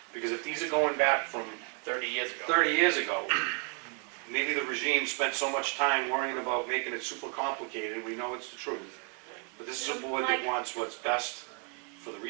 because if these are going back from 30 years ago. 30 years ago, maybe the regime spent so much time worrying about making it super complicated, we know it's the truth. But this is a board that wants what's best for the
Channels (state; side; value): quieter; left; 39.3 dB